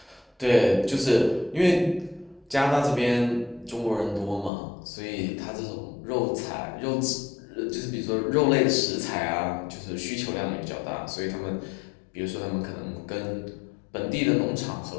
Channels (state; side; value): drops out; right; at 4.5 s